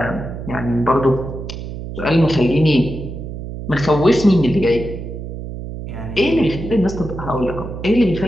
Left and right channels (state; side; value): noise; right; hum, 8 dB below the sound